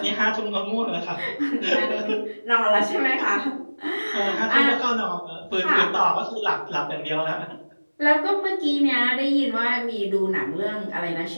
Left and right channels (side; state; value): both; inverted; correlation -1.00